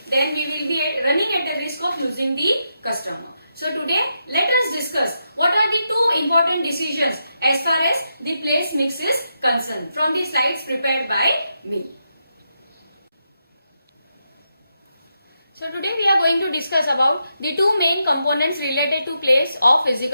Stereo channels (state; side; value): inverted; both; correlation -0.84